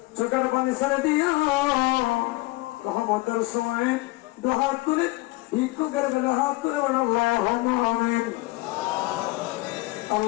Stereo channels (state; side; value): quieter; right; 21.6 dB